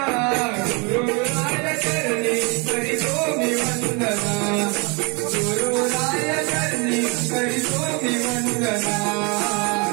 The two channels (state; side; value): quieter; left; 30.6 dB